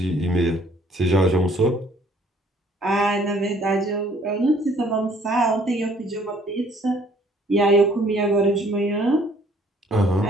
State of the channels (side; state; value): both; normal; correlation 0.60